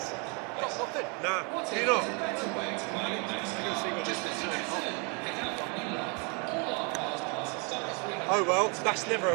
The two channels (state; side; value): quieter; left; 34.2 dB